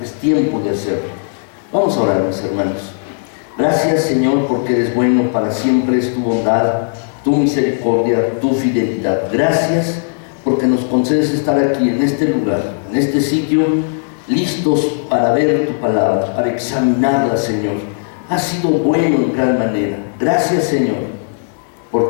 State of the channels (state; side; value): silent; right; digital silence